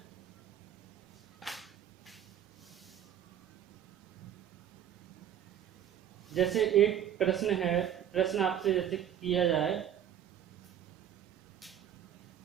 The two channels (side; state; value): left; quieter; 10.0 dB